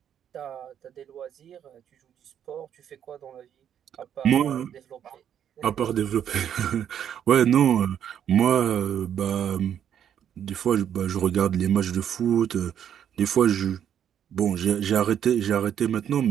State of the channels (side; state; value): left; quieter; 9.3 dB